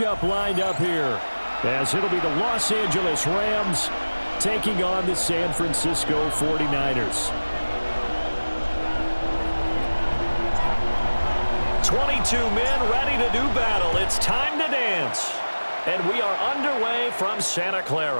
lined up here, as it'll be the Los Angeles Rams taking on the San Francisco 49ers. 22 men ready to do battle. It's time to dance. And we are underway from Santa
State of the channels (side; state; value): both; inverted; correlation -1.00